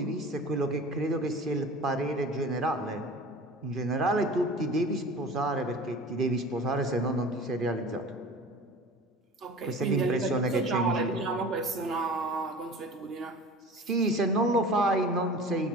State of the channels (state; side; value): normal; both; correlation 0.39